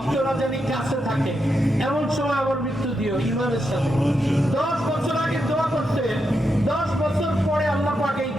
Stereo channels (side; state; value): both; normal; correlation 0.84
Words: যেন কাছে থাকে এমন সময় আমার মৃত্যু দিও ঈমানের সাথে। 10 বছর আগে দোয়া করছে, 10 বছর পরে আল্লাহ পাক এই